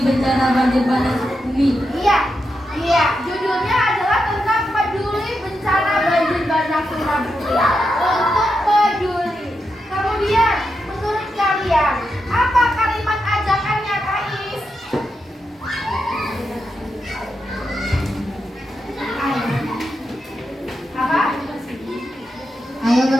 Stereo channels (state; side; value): normal; both; correlation 0.86